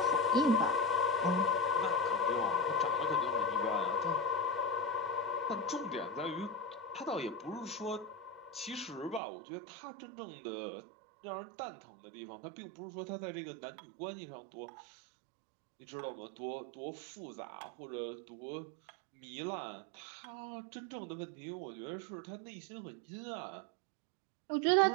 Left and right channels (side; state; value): left; drops out; at 9.2 s